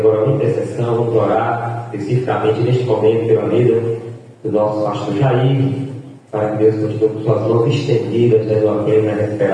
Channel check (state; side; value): identical; both; correlation 1.00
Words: uma intercessão, vamos orar especificamente neste momento pela vida do nosso pastor Jair, para que Deus continue com suas mãos estendidas, dando a plena